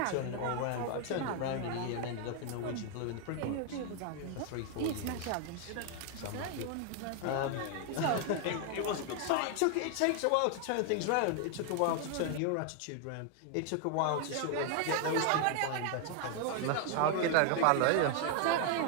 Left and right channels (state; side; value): different; both; correlation 0.00